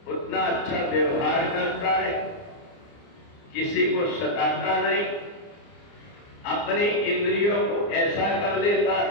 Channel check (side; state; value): right; late; 29 ms